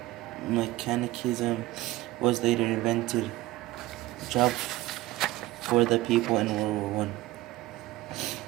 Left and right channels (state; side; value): quieter; left; 17.6 dB